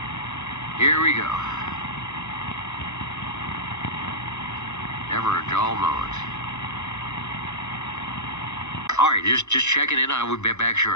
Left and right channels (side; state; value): right; late; 0.82 ms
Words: Here we go. Never a dull moment. All right, just checking in. I will be back